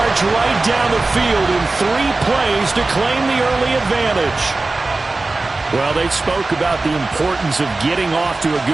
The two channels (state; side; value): quieter; left; 3.3 dB